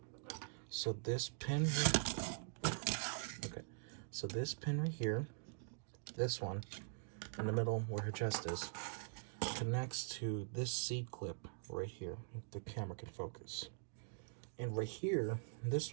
So this pin, okay, so this pin right here, this one in the middle where her chest is, connects to this C-clip right here, if the camera can focus. And right here,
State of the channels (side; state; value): left; silent; digital silence